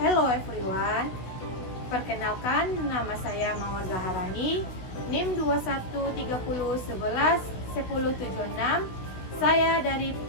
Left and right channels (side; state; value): right; late; 16 ms